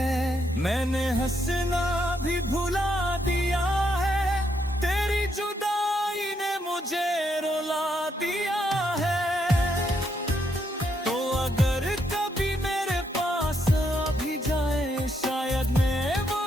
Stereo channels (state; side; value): normal; both; correlation 0.77